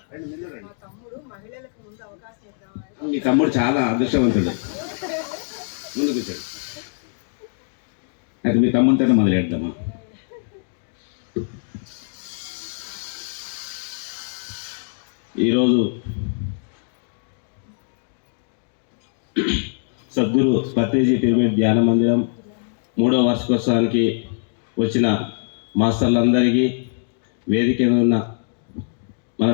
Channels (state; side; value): silent; right; digital silence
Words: మీ తమ్ముడు చాలా అదృష్టవంతుడు. ముందు కూర్చోండి. అయితే మీ తమ్ముడితో మొదలెడదామా? ఈరోజు సద్గురు పత్రిజీ పిరమిడ్ ధ్యాన మందిరం 3వ వార్షికోత్సవానికి వచ్చిన మాస్టర్లందరికీ, వేదిక మీద ఉన్న మన